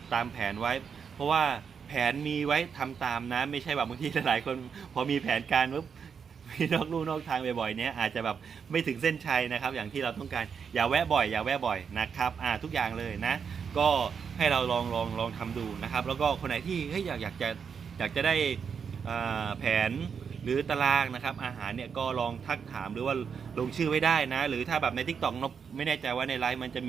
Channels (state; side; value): quieter; left; 6.6 dB